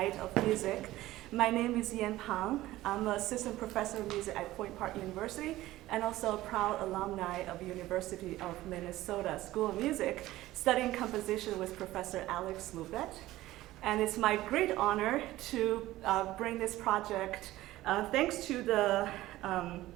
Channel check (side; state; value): left; quieter; 16.3 dB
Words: of music. My name is Yan Pang. I'm an assistant professor of music at Point Park University and also a proud alumni of University of Minnesota School of Music, studying composition with Professor Alex Lubet. And it's my great honor to bring this project thanks to the